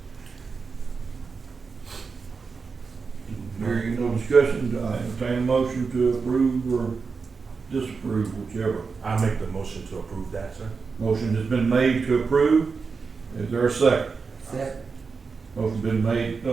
Hearing no discussion, I entertain a motion to approve or disapprove, whichever. I make the motion to approve that, sir. Motion has been made to approve. Is there a second? Second. Motion been made,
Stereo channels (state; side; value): quieter; left; 4.9 dB